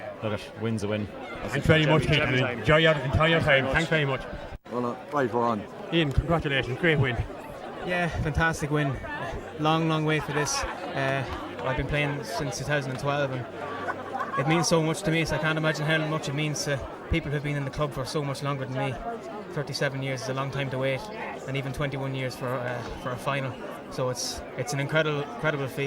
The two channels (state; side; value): identical; both; correlation 1.00